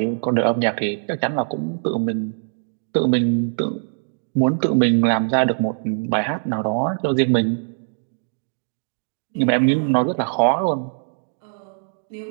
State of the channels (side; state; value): left; silent; digital silence